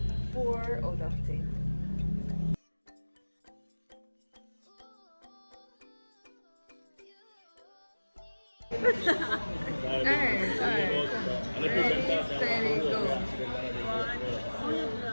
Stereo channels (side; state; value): both; inverted; correlation -1.00